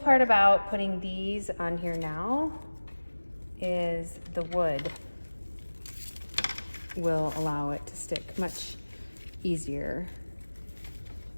about putting these on here now is the wood will allow it to stick much easier,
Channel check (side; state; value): both; inverted; correlation -1.00